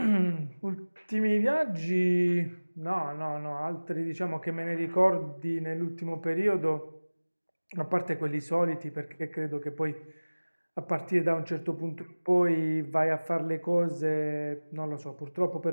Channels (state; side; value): inverted; both; correlation -1.00